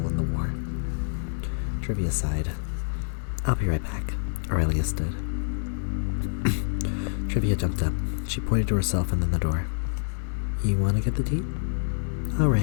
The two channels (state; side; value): silent; right; digital silence